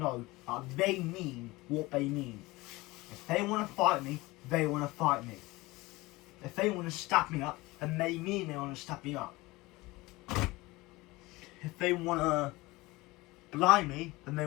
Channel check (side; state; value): right; quieter; 21.2 dB